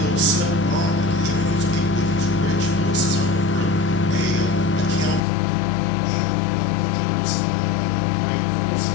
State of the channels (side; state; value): right; drops out; at 5.2 s